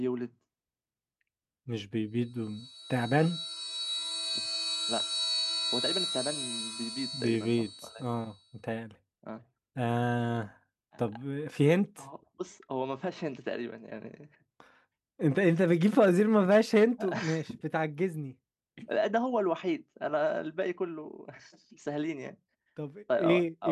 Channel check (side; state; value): both; identical; correlation 1.00